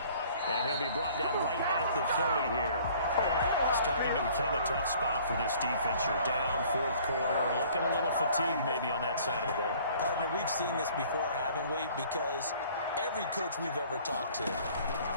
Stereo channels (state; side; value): inverted; both; correlation -0.54